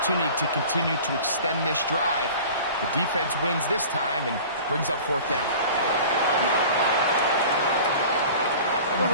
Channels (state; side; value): inverted; both; correlation -0.41